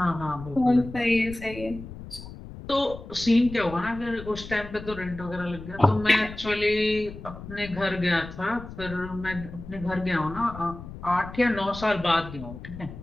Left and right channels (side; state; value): left; noise; rumble, 13 dB below the sound